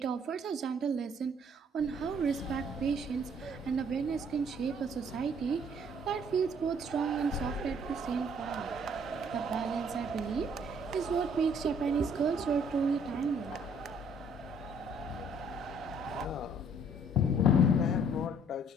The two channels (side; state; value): both; normal; correlation 0.61